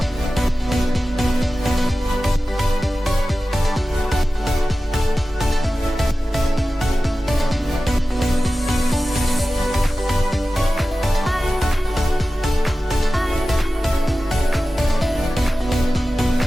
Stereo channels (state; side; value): normal; both; correlation 0.95